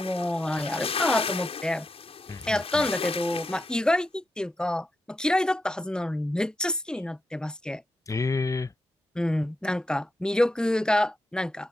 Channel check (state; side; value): normal; both; correlation 0.86